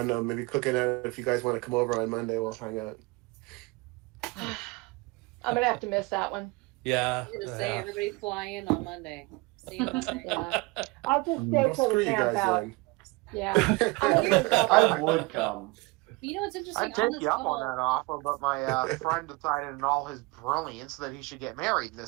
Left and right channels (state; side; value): quieter; left; 25.0 dB